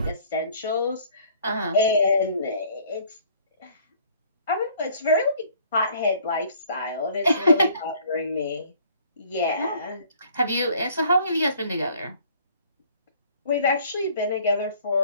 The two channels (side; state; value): both; inverted; correlation -0.57